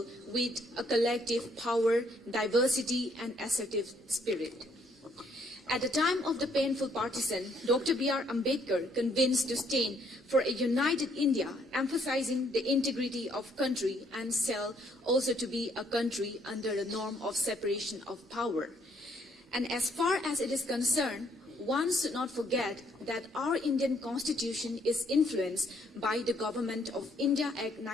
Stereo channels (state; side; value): normal; both; correlation 0.68